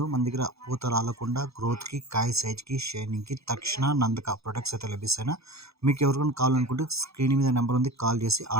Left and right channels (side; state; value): left; late; 0.78 ms